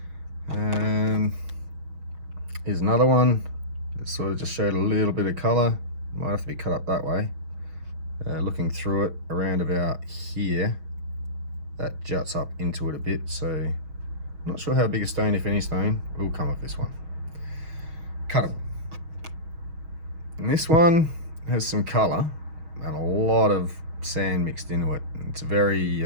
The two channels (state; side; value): late; left; 6.3 ms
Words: Here's another one that sort of just showed a little bit of colour. Might have to be cut up that way. Looking through it around about here, that juts up into it a bit, so not sure how big a stone, if any stone, will come off this one. Cuttable. And this one has some colour and a lot of sand mixed into it. It's a very